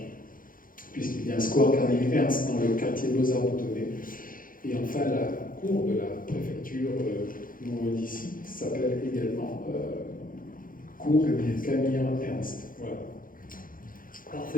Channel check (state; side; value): late; right; 0.40 ms